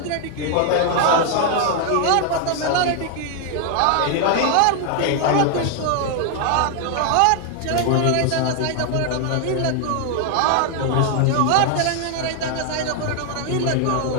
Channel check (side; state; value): both; different; correlation 0.00